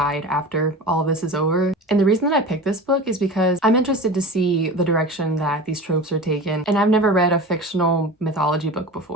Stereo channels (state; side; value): normal; both; correlation 0.33